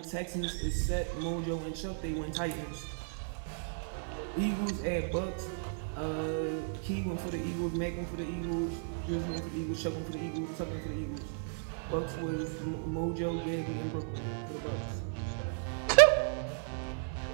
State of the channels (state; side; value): silent; left; digital silence